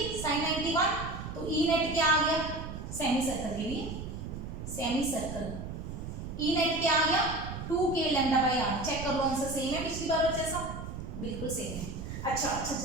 साइन 91, तो ई नेट क्या आ गया, सेमी सर्कल के लिए, सेमी सर्कल ई नेट क्या आ गया 2k λ/r, चेक कर लो आंसर सेम है पिछली बार जैसा, बिल्कुल सेम है। अच्छा,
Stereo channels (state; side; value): noise; right; rumble, 8 dB below the sound